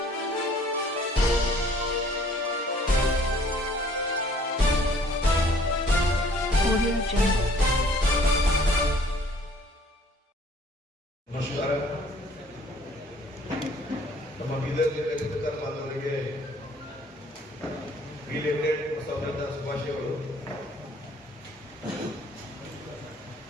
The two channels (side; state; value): both; normal; correlation 0.57